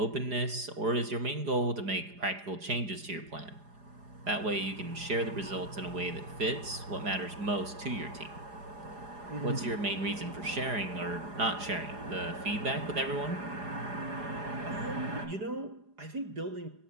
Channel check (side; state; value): left; late; 4.9 ms